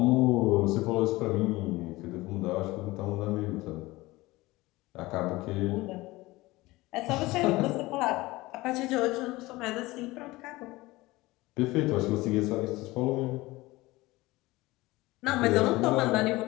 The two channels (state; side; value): quieter; right; 20.0 dB